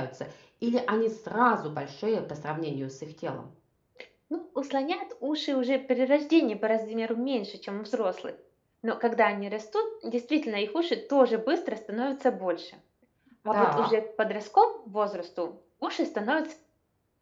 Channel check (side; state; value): both; identical; correlation 1.00